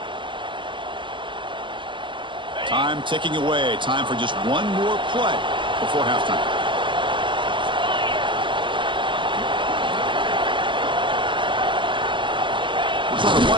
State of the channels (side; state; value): left; late; 0.24 ms